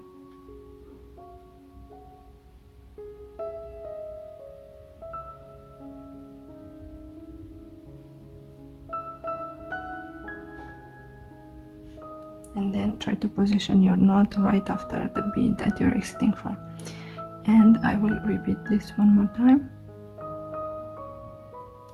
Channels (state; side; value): identical; both; correlation 1.00